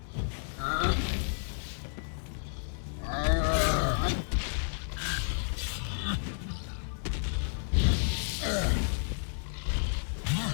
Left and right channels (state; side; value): silent; right; 57 dB below the other